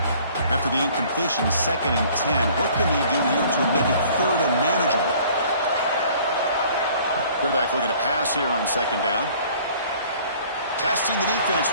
After the incompletion, 2nd and 10. What can they do here to make it 3rd and manageable? Quarterback looking to pass here on 2nd down. Testing the defense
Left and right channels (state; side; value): inverted; both; correlation -0.54